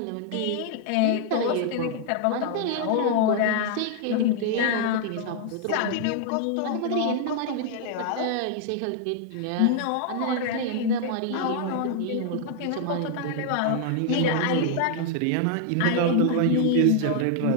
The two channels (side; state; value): both; different; correlation 0.00